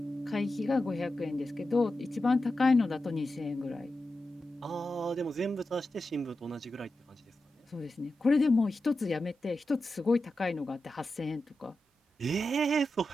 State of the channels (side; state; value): both; normal; correlation 0.91